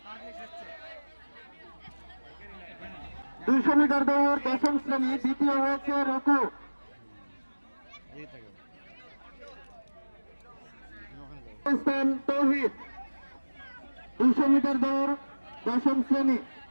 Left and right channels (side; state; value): both; inverted; correlation -1.00